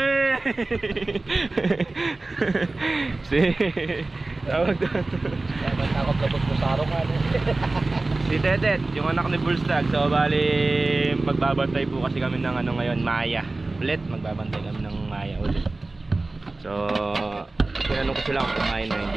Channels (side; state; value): left; quieter; 3.2 dB